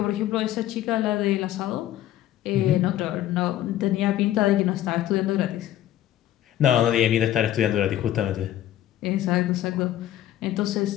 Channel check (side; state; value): right; quieter; 12.9 dB